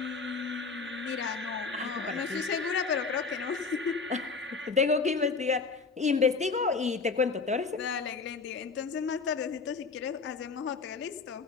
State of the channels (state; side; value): quieter; right; 4.7 dB